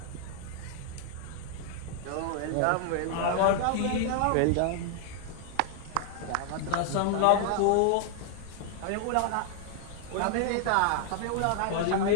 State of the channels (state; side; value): different; both; correlation 0.00